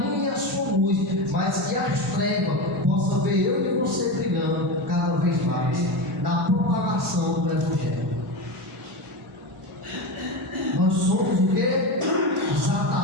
e a sua luz, mas que as trevas possam ver eu e você brilhando cada vez mais na propagação do Evangelho. Nós somos o quê? Os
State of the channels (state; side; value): normal; both; correlation 0.20